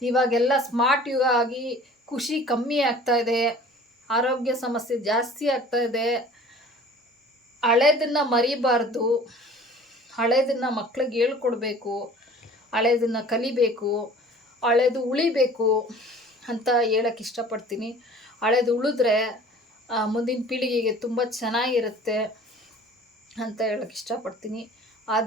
ಇವಾಗೆಲ್ಲ ಸ್ಮಾರ್ಟ್ ಯುಗ ಆಗಿ ಖುಷಿ ಕಮ್ಮಿ ಆಗ್ತಾಯಿದೆ, ಆರೋಗ್ಯ ಸಮಸ್ಯೆ ಜಾಸ್ತಿ ಆಗ್ತಾಯಿದೆ. ಹಳೇದನ್ನು ಮರಿಬಾರ್ದು, ಹಳೇದನ್ನು ಮಕ್ಳಿಗೆ ಹೇಳ್ಕೊಡ್ಬೇಕು, ಹಳೇದನ್ನು ಕಲಿಬೇಕು, ಹಳೇದು ಉಳಿಬೇಕು ಅಂತ ಹೇಳೋಕ್ಕೆ ಇಷ್ಟಪಡ್ತೀನಿ. ಹಳೇದು ಉಳಿದ್ರೆ ಮುಂದಿನ ಪೀಳಿಗೆಗೆ ತುಂಬ ಚೆನ್ನಾಗಿರುತ್ತೆ ಅಂತ ಹೇಳೋಕ್ಕೆ ಇಷ್ಟಪಡ್ತೀನಿ.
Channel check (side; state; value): both; normal; correlation 0.46